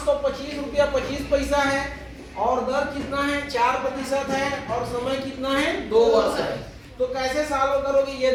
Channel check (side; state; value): both; identical; correlation 1.00